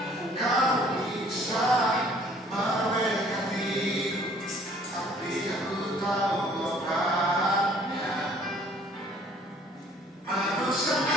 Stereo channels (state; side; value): normal; both; correlation 0.57